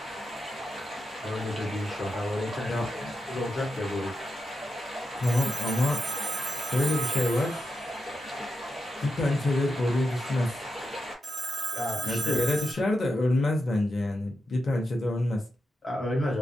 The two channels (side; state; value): both; normal; correlation 0.87